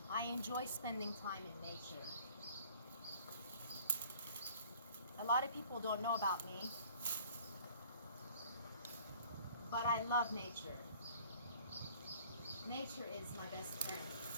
I enjoy spending time in nature. A lot of people don't know about me, but I love nature. Nature is my best friend.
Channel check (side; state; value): both; inverted; correlation -0.52